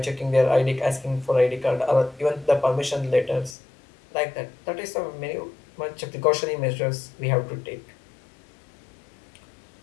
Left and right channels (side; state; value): right; drops out; at 3.6 s